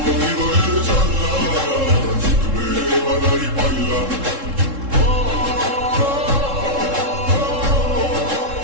হৃদয়ের জানলা, জিতবে এবার দাঁড়ি পাল্লা।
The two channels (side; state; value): left; late; 3.7 ms